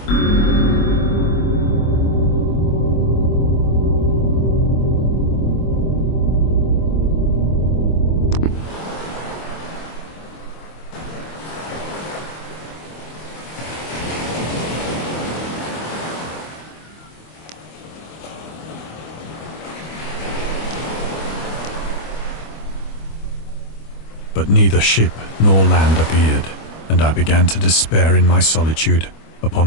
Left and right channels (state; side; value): late; right; 25 ms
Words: But neither ship nor land appeared, and I began to despair in my solitude